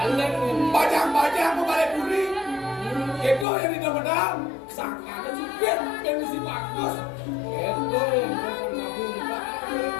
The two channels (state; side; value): drops out; right; at 3.5 s